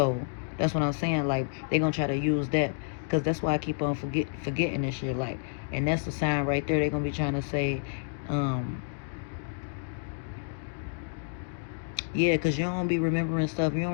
that's what I'm saying. Like they gonna try to use that. Cause that's why I keep on forgetting this shit. Like, and that's the sign right there. They gonna be trying to say, um, yeah, cause you don't be remembering stuff. You don't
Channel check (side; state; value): right; silent; digital silence